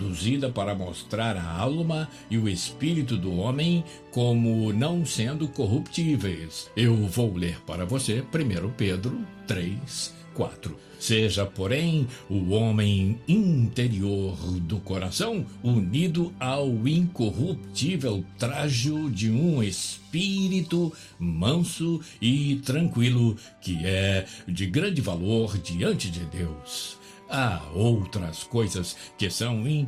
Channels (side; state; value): both; identical; correlation 1.00